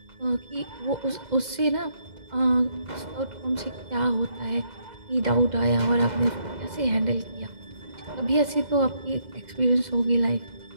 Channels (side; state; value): left; late; 2.1 ms